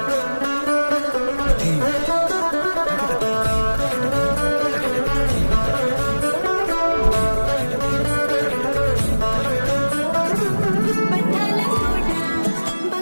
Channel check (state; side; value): inverted; both; correlation -1.00